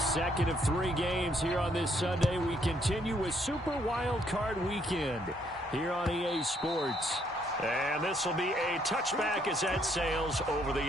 second of 3 games here on this Sunday. We continue with Super Wild Card Weekend here on EA Sports. And this will be a touchback as that sails over the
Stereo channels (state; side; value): normal; both; correlation 0.70